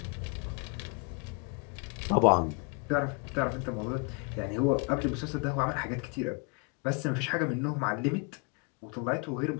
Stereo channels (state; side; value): quieter; right; 33.4 dB